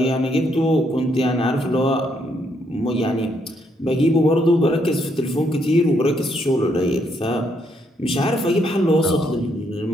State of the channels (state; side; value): normal; both; correlation 0.74